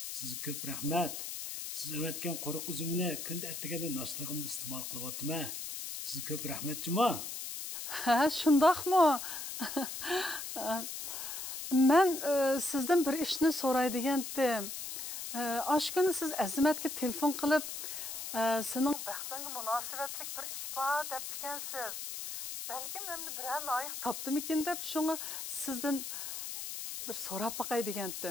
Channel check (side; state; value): left; noise; hiss, 6 dB below the sound